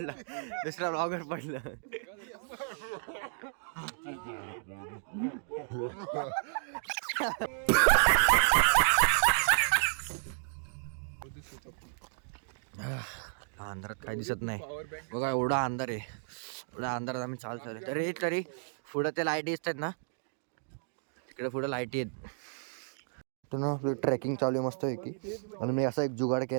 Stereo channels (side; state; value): left; silent; digital silence